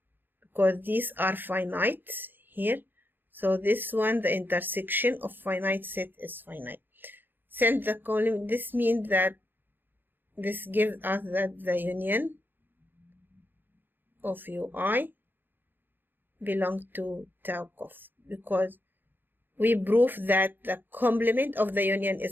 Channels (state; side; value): late; left; 0.094 ms